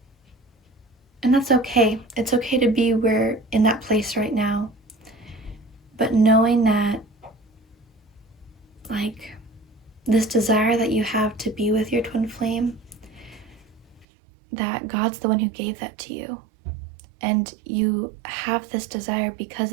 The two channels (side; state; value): left; drops out; at 14.1 s